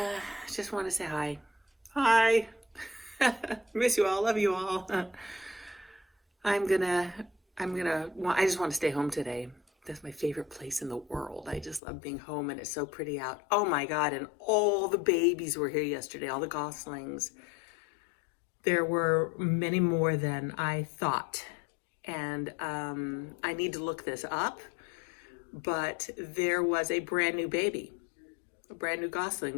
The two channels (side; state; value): right; drops out; at 11.8 s